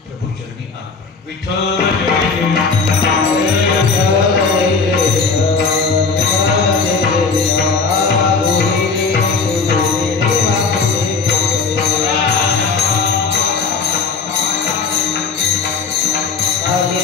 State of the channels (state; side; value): quieter; right; 4.9 dB